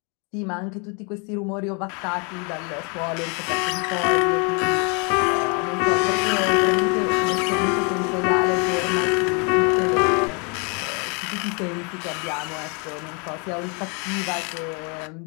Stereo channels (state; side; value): quieter; right; 34.6 dB